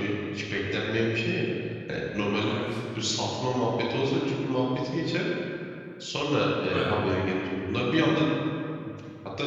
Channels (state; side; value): identical; both; correlation 1.00